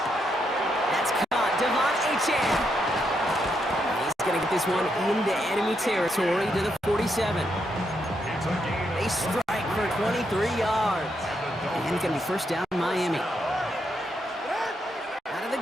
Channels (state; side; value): normal; both; correlation 0.79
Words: That's caught. Devon Achane. He's going to get this one into enemy territory to the 47. They strike for 23 yards. And it's going to be first down Miami. Out of the